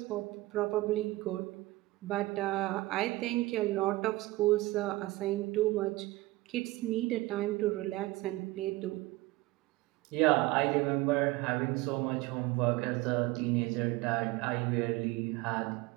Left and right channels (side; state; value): left; quieter; 19.8 dB